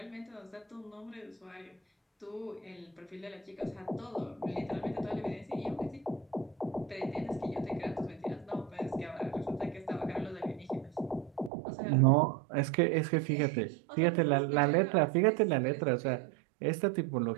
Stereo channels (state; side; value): drops out; left; at 11.5 s